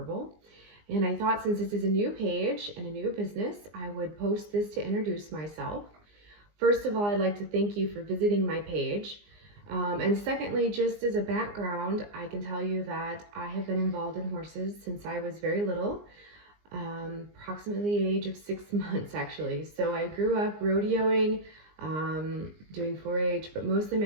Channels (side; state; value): left; late; 19 ms